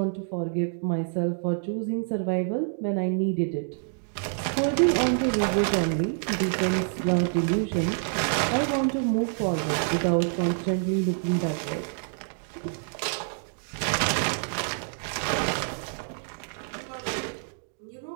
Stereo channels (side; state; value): left; silent; digital silence